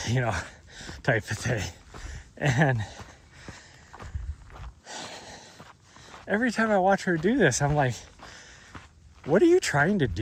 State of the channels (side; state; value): both; identical; correlation 1.00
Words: you know, type of thing. And every time I watch her do this, I'm like, what are you trying to